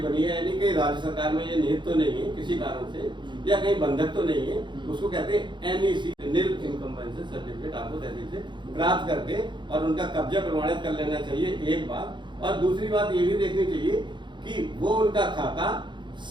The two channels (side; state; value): left; late; 0.23 ms